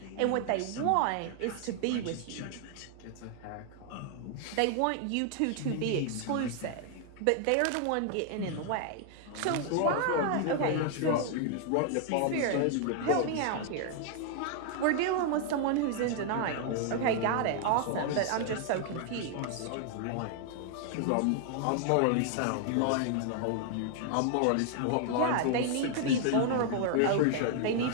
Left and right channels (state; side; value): different; both; correlation 0.00